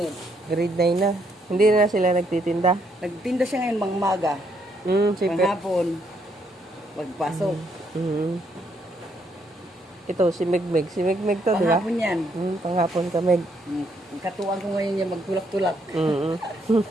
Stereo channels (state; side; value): normal; both; correlation 0.73